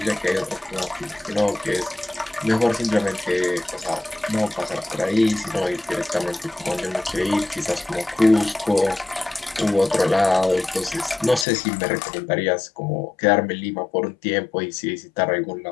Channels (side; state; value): right; drops out; at 11.5 s